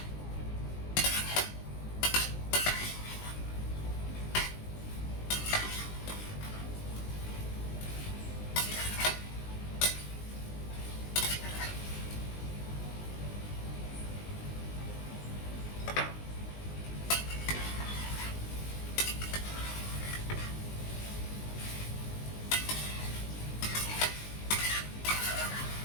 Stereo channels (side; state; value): right; late; 19 ms